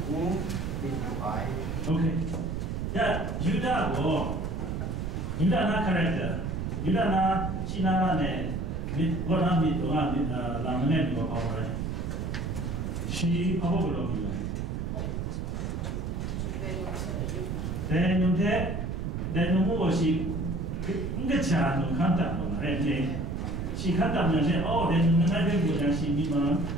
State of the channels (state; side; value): noise; right; rumble, 3 dB below the sound